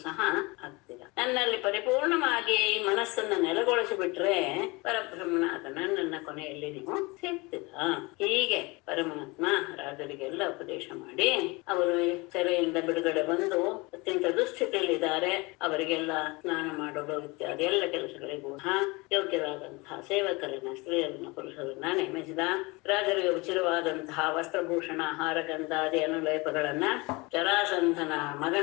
ಸಹ ಆಗ್ತೀರಾ. ನನ್ನಲ್ಲಿ ಪರಿಪೂರ್ಣವಾಗಿ ಮನಸ್ಸನ್ನ ನೆಲೆಗೊಳಿಸಿಬಿಟ್ರೆ ಪರಬ್ರಹ್ಮನಾದ ನನ್ನನ್ನ ಕೊನೆಯಲ್ಲಿ ನೀವು ಸಿಗ್ತೀರಾ. ಹೀಗೆ ಪರಮಾತ್ಮ ರಾಜರಿಗೆಲ್ಲ ಉಪದೇಶ ಮಾಡಿ, ಅವರು ಸೆರೆಯಿಂದ ಬಿಡುಗಡೆ ಬಂದು ಅತ್ಯಂತ ದುಸ್ಥಿತಿಯಲ್ಲಿದ್ದಾರೆ, ಅವರಿಗೆಲ್ಲ ಸ್ನಾನ ಮಾಡೋದು ಇತ್ಯಾದಿ ಎಲ್ಲ ಕೆಲಸಗಳಿಗೂ ಯೋಗ್ಯರಾದಂತಹ ಸೇವಕರನ್ನ, ಸ್ತ್ರೀಯರನ್ನ, ಪುರುಷರನ್ನ ನೇಮಿಸಿದ. ರಾಜರಿಗೆ ಉಚಿತವಾದಂತಹ ವಸ್ತ್ರಭೂಷಣ, ಹಾರಗಂಧಾದಿ ಅನುಲೇಪಗಳನ್ನ ಜರಾಸಂಧನ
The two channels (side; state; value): right; quieter; 25.3 dB